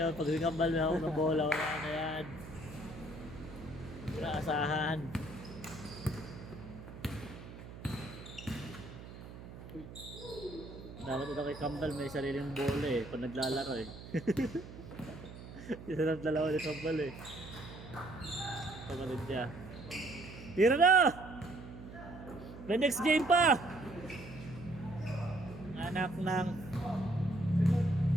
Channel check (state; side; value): noise; right; hum, 14 dB below the sound